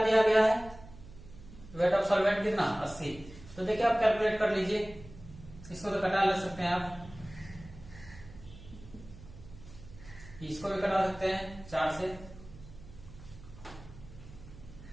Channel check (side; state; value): right; noise; hum, 17 dB below the sound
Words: दिया गया है, वेट ऑफ सॉल्वेंट कितना 80। तो देखिए आप कैलकुलेट कर लीजिए, इसको तो कटा ले सकते हैं आप, इसको भी कटा सकते हैं 4 से,